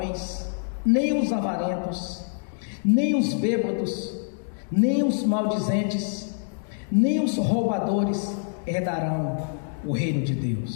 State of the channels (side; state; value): right; silent; digital silence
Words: nem os avarentos, nem os bêbados, nem os maldizentes, nem os roubadores herdarão o reino de